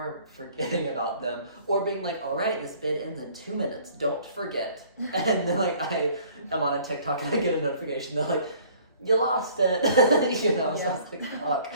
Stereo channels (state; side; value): inverted; both; correlation -0.55